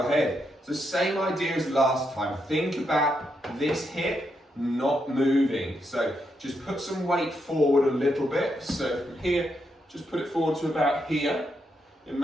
head. It's the same idea as last time. Think about this hip not moving. So just put some weight forward a little bit. So from here, just put it forward to about here.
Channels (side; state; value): both; normal; correlation 0.81